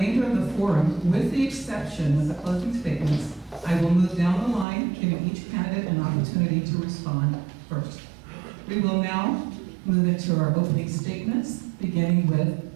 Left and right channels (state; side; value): drops out; left; at 4.7 s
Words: of the forum, with the exception of the closing statements, I will move down the line, giving each candidate an opportunity to respond first. We will now move into our opening statements, beginning with